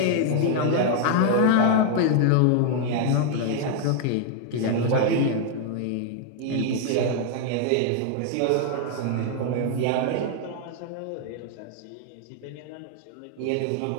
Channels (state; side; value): different; both; correlation 0.00